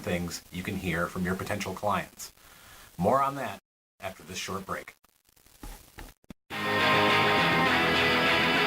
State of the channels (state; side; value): identical; both; correlation 1.00